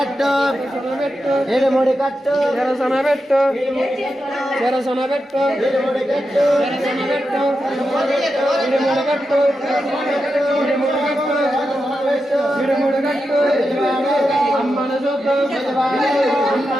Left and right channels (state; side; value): normal; both; correlation 0.88